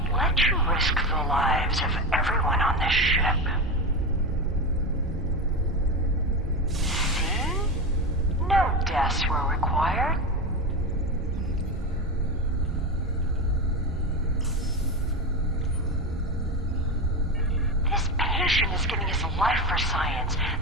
let you risk the lives of everyone on this ship. See? No deaths were required. patient is giving his life for science.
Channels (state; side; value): normal; both; correlation 0.19